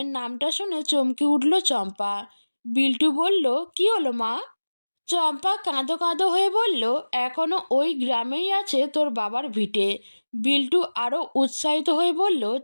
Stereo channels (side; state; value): both; inverted; correlation -1.00